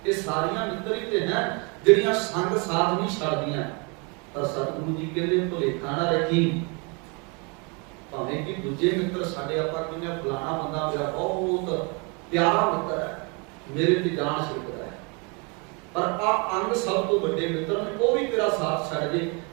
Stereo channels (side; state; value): left; quieter; 32.5 dB